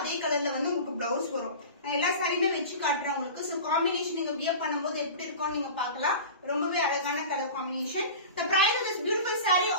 கலர்ல வந்து உங்களுக்கு blouse வரும் நான் எல்லா சாரியுமே வெச்சு காட்றேன் உங்களுக்கு சோ காம்பினேஷன் நீங்க வியர் பண்ணும்போது எப்படி இருக்கும் நீங்க பார்க்கலாம் ரொம்பவே அழகான colour combination the price of this beautiful saree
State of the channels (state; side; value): inverted; both; correlation -0.34